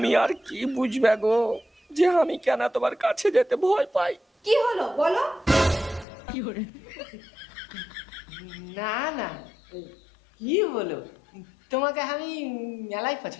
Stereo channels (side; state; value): right; drops out; at 6.1 s